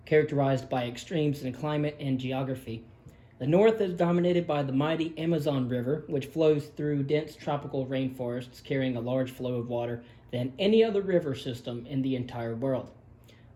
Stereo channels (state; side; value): identical; both; correlation 1.00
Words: characterized by extremes in climate and geography. The north is dominated by the mighty Amazon River, which flows through dense tropical rainforests carrying a large flow of water than any other river system in the entire world.